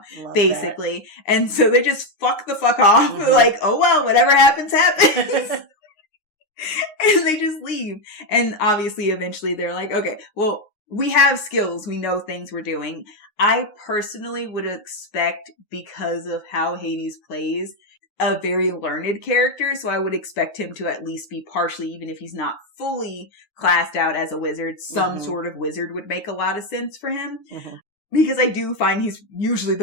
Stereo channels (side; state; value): right; late; 9.6 ms